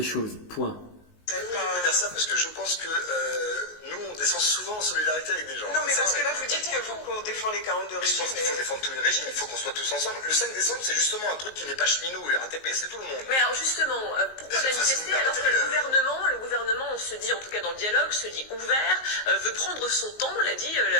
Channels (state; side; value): late; right; 19 ms